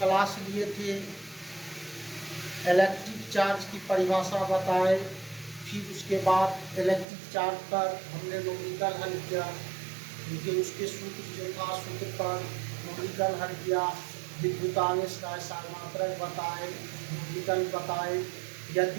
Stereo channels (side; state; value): left; drops out; at 7.1 s